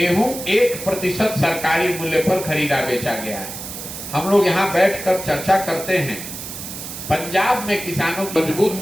1% सरकारी मूल्य पर खरीदा बेचा गया है। हम लोग यहाँ बैठकर चर्चा करते हैं, पंजाब में किसानों मजबूत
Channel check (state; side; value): noise; right; hiss, 9 dB below the sound